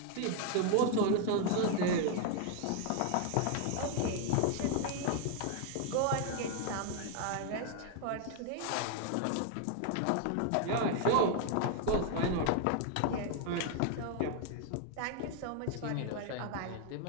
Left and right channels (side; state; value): both; different; correlation 0.00